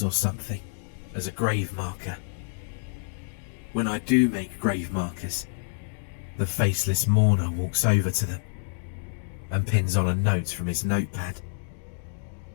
or something as a grave marker. When I do make grave markers, the faceless mourner walks over to them and pins on a note from his notepad.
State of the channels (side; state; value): right; silent; digital silence